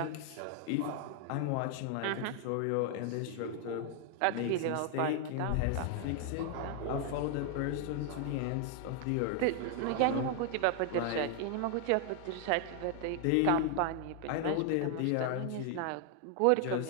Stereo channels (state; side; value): different; both; correlation 0.00